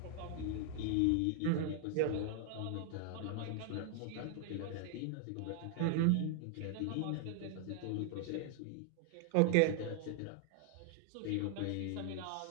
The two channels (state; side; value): different; both; correlation 0.00